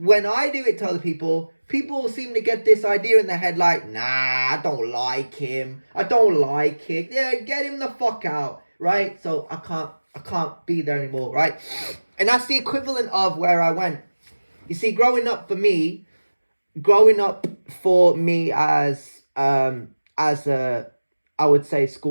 I do it to other people seem to get this idea in their head like, nah, I don't like him. I don't like it. Yeah, get him the fuck out, right? So I can't. I can't be there anymore, right? And that's the equivalent of where I went. You see, growing up for me as a, I would say,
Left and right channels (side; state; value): both; inverted; correlation -1.00